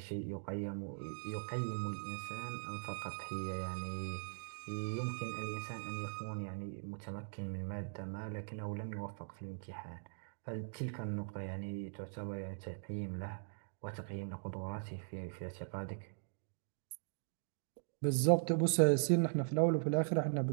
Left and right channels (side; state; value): left; silent; digital silence